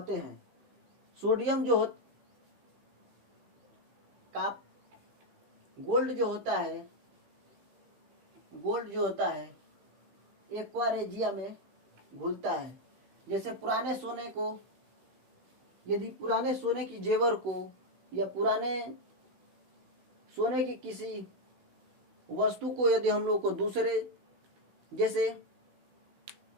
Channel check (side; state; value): left; late; 16 ms